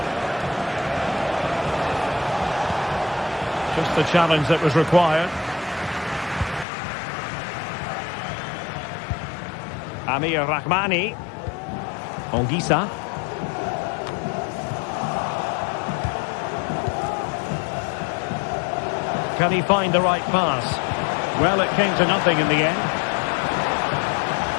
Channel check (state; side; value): drops out; right; at 6.7 s